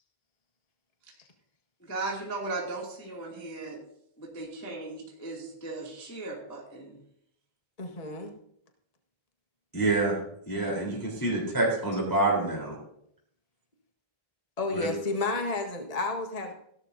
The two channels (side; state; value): right; late; 1.7 ms